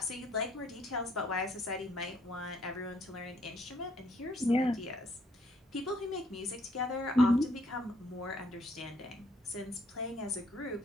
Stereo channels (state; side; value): normal; both; correlation 0.67